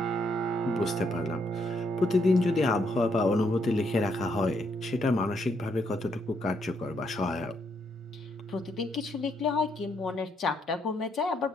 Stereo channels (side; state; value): both; normal; correlation 0.75